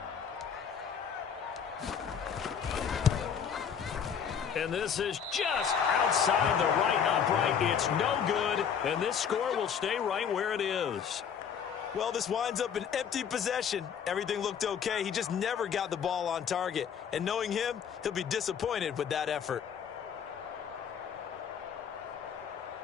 And this is just outside the right upright. It's no good, and this score will stay right where it is. Well, this winds up an empty possession. Everything looked okay. He just never got the ball on target. And knowing him, he'll be disappointed with that effort.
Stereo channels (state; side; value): quieter; right; 7.5 dB